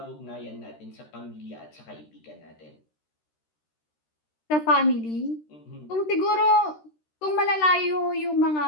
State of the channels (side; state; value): right; late; 13 ms